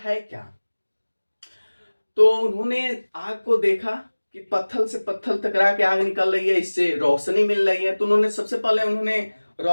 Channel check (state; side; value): inverted; both; correlation -1.00